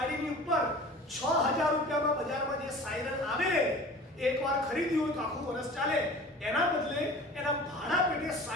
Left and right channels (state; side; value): normal; both; correlation 0.41